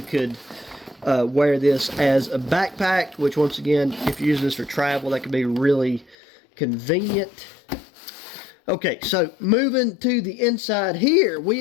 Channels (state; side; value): drops out; right; at 6.2 s